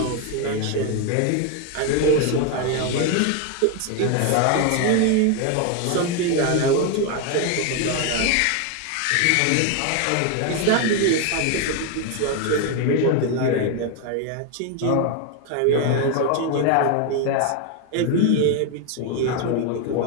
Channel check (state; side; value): different; both; correlation 0.01